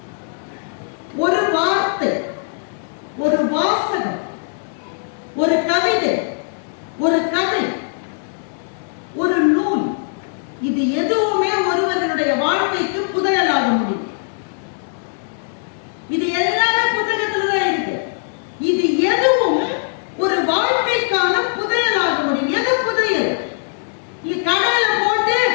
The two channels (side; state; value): right; silent; digital silence